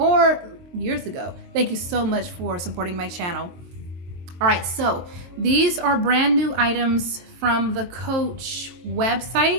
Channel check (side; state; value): left; late; 23 ms